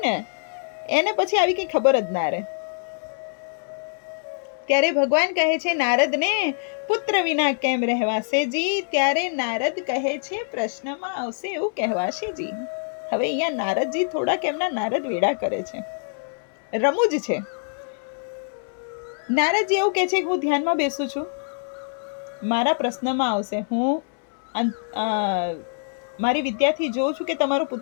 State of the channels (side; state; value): right; silent; 62 dB below the other